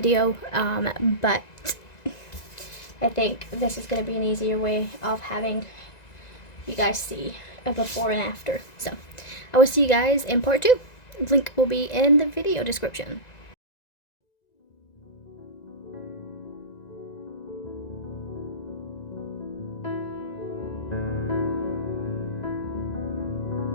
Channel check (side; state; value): right; late; 1.9 ms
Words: but I think this is gonna be an easier way of having you guys see a before and after. So I will see you guys in part 2. Link will be in the video description.